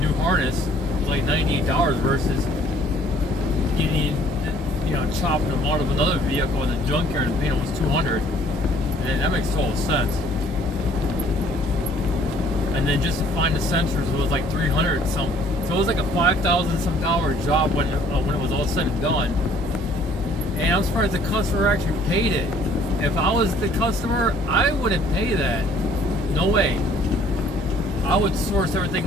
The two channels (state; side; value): normal; both; correlation 0.58